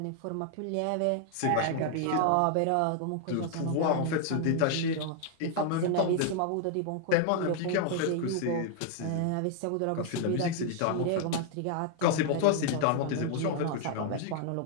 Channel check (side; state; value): both; different; correlation 0.00